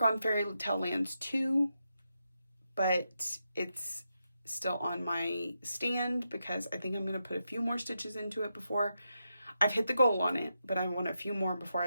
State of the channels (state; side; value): inverted; both; correlation -0.85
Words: on Fairy Tale Lands 2, but it's still on my stand because I think I'm going to put a few more stitches into it before I've hit the goal on it, but I want a few more before